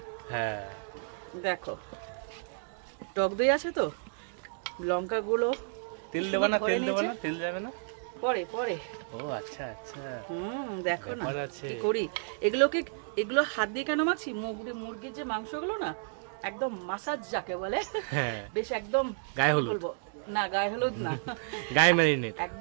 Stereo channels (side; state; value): left; silent; digital silence